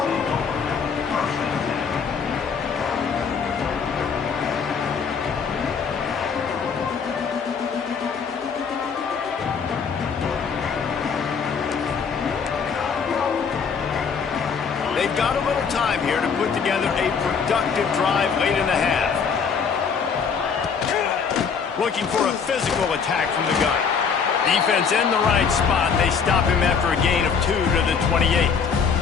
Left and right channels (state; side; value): quieter; right; 6.1 dB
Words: They've got a little time here to put together a productive drive late in the half. Looking for a physical attack from the gun. Defense in the right spot. They stop him after a gain of 2 to the 28.